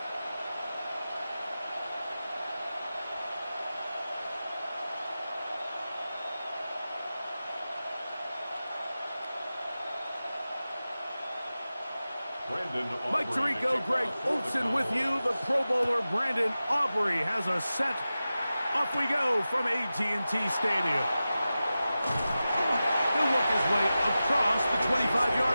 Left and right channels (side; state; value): both; inverted; correlation -0.94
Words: Mike Tirico, Greg Olsen with you. The Pro Bowler Brandon Aubrey has a set. Off we go from AT&T Stadium. He'll work his way across the